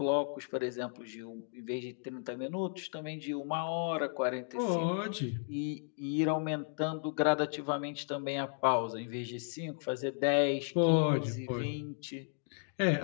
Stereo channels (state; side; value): silent; right; digital silence